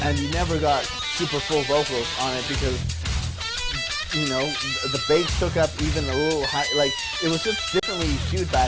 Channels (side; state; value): both; identical; correlation 1.00